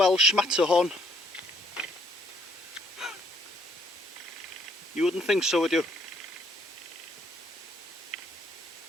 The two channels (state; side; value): normal; both; correlation 0.67